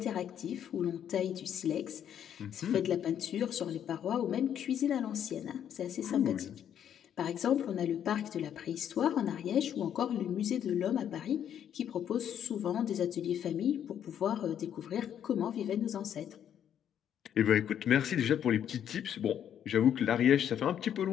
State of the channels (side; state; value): right; quieter; 9.5 dB